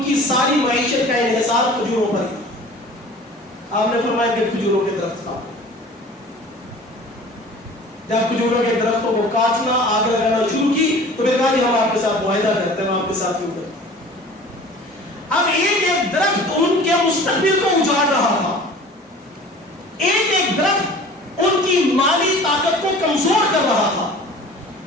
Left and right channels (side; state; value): both; normal; correlation 0.44